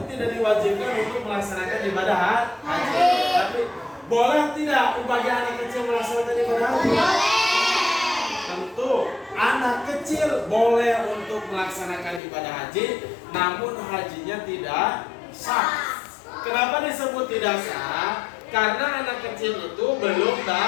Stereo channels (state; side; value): drops out; right; at 12.2 s